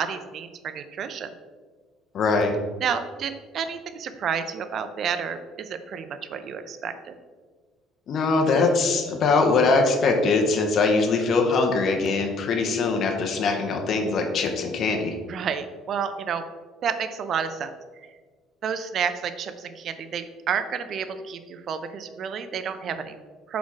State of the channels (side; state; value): both; normal; correlation 0.58